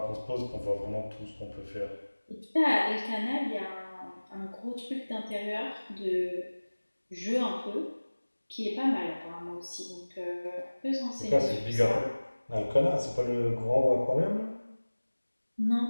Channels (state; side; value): inverted; both; correlation -1.00